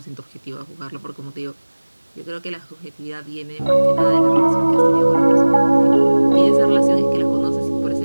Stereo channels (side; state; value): both; inverted; correlation -1.00